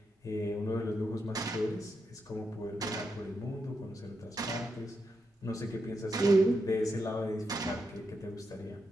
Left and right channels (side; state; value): both; normal; correlation 0.84